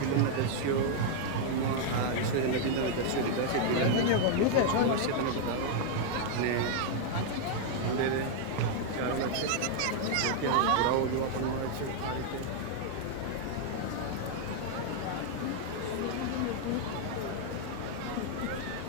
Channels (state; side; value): different; both; correlation 0.00